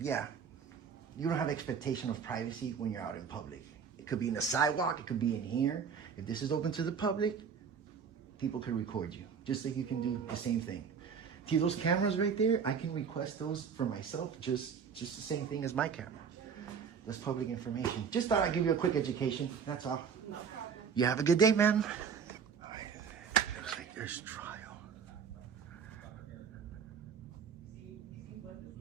you don't have expectation of privacy when you're out in public. It could be in the sidewalk. It could be in here. If this is open to the public, people could record you. Just like you can do the same thing. See those cameras right there? I can request those for myself, just the same thing as my camera. That's public information. Just thought I'd give you a quick education. That's all. No problem. You have a good day, ma'am. Looks like there's trial.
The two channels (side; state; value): left; quieter; 6.7 dB